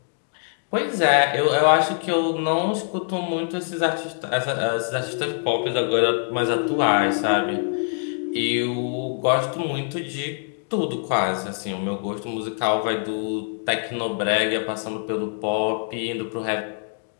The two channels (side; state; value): right; silent; 63 dB below the other